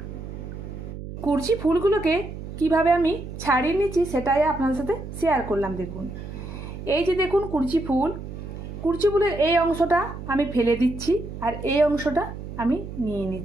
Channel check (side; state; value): right; noise; hum, 10 dB below the sound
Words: কুরচি ফুলগুলোকে কিভাবে আমি ছাড়িয়ে নিচ্ছি সেটাই আপনাদের সাথে শেয়ার করলাম। দেখুন, এই যে দেখুন কুরচি ফুলের এই অংশটা আমি ফেলে দিচ্ছি আর এই অংশটা আমি নিয়ে